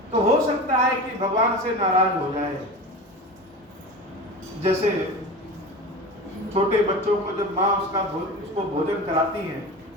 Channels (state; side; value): normal; both; correlation 0.31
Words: तो हो सकता है कि भगवान से नाराज हो जाए। जैसे छोटे बच्चों को जब माँ उसको भोजन कराती है